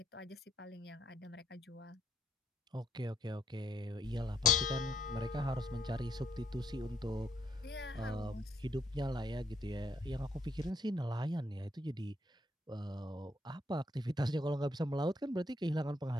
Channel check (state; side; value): normal; both; correlation 0.74